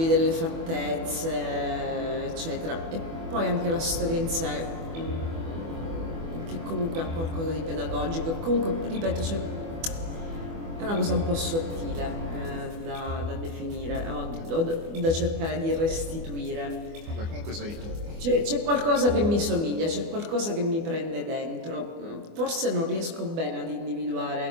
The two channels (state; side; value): late; left; 24 ms